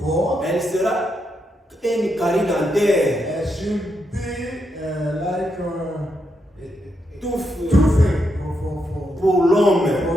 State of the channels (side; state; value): both; normal; correlation 0.82